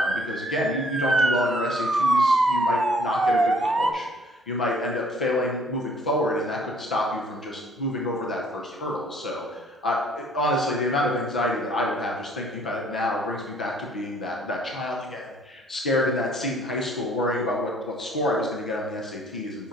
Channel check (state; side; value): normal; both; correlation 0.59